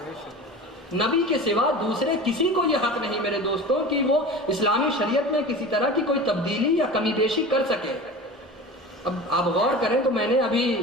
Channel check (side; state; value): both; normal; correlation 0.34